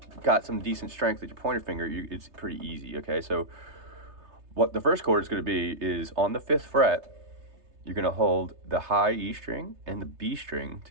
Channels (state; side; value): late; left; 3.3 ms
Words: got some decent strength with your pointer finger, it's pretty easy. Okay, so what the first chord is going to be is on the 5th fret. You're going to hold the high E string and the B string